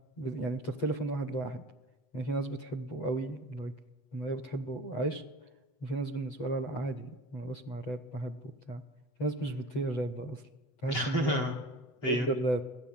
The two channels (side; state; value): right; late; 8.0 ms